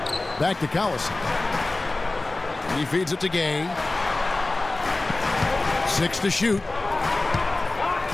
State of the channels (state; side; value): quieter; right; 3.0 dB